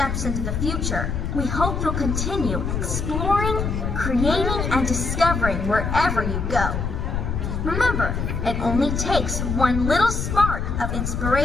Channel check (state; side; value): noise; left; rumble, 2 dB below the sound